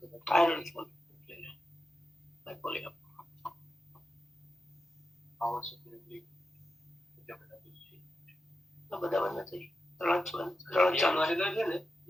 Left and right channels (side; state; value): both; normal; correlation 0.90